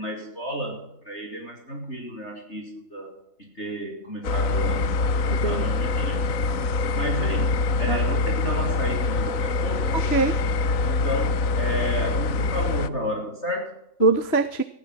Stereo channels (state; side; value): late; right; 3.9 ms